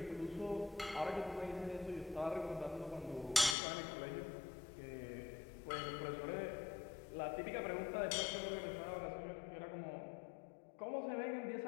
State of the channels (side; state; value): right; drops out; at 3.6 s